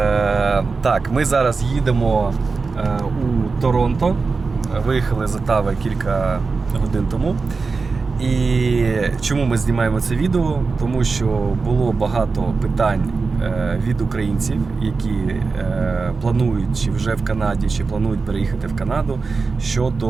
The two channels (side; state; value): left; quieter; 4.4 dB